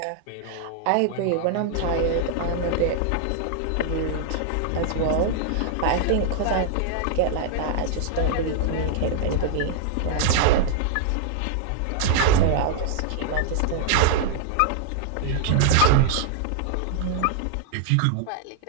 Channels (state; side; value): different; both; correlation 0.00